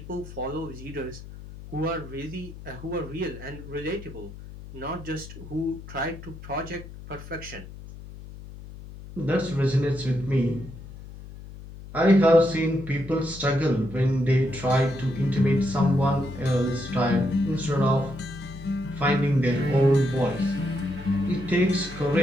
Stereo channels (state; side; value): noise; left; hum, 14 dB below the sound